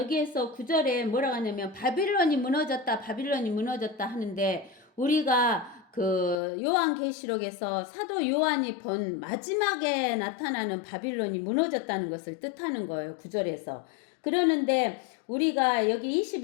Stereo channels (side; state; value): right; drops out; at 6.4 s